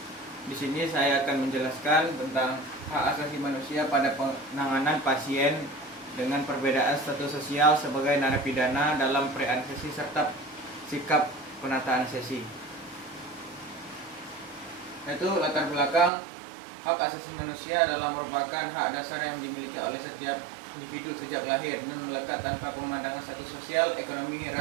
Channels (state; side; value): drops out; left; at 16.1 s